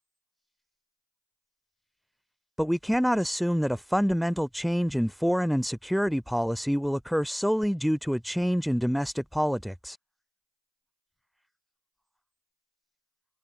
But we cannot assume that a fundamental change in foreign and security policy will occur solely due to a change in domestic politics.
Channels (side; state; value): both; identical; correlation 1.00